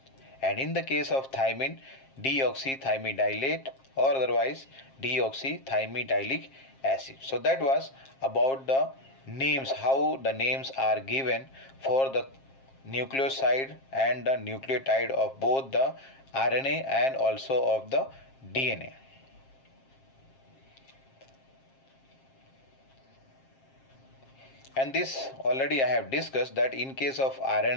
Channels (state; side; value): late; right; 7.5 ms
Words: And in the case of thymine, deoxythymidylate or otherwise deoxythymidyllic acid. So that was about the names, how the names are given for the nucleoside and the nucleotide of both the RNA and also of the DNA. And this already I have discussed that in case of